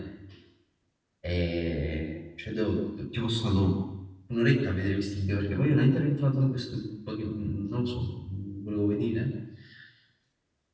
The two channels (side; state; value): both; identical; correlation 1.00